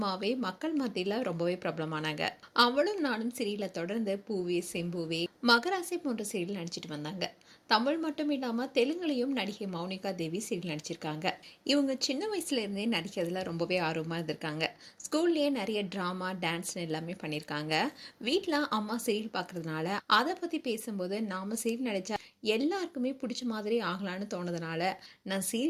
மக்கள் மத்தியில் ரொம்பவே பிரபலமானாங்க. அவளும் நானும் சீரியலை தொடர்ந்து பூவே செம்பூவே மகராசி போன்ற சீரியல் நடிச்சிட்டு வந்தாங்க. தமிழ் மட்டும் இல்லாமல் தெலுங்குலையும் நடிகை மௌனிகா தேவி சீரியல் நடிச்சிருக்காங்க. இவங்க சின்ன வயசுலேருந்தே நடிக்கிறதுல ரொம்பவே ஆர்வமாக இருந்திருக்காங்க. ஸ்கூல்லேயே நிறைய ட்ராமா டான்ஸ்னு எல்லாமே பண்ணியிருக்காங்க. வீட்டில் அம்மா சீரியல் பார்க்குறதுனால அதை பற்றி பேசும்போது நாம் சீரியல் நடித்தா எல்லாருக்குமே பிடிச்ச மாதிரி ஆகலான்னு தோணுதுனால நான்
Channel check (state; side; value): identical; both; correlation 1.00